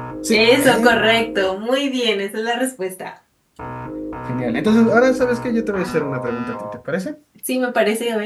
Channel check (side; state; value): both; identical; correlation 1.00